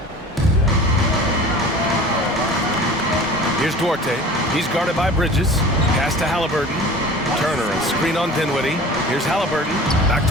Here's Duarte. He's guarded by Bridges. Pass to Halliburton. Turner, a screen on Dinwiddie. Here's Halliburton. Back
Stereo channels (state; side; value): normal; both; correlation 0.41